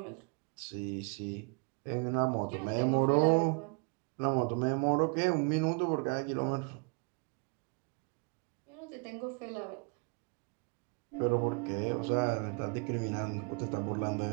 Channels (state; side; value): quieter; left; 34.9 dB